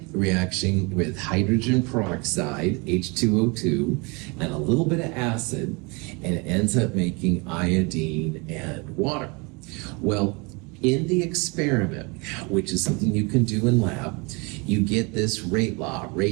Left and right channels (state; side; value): quieter; left; 29.2 dB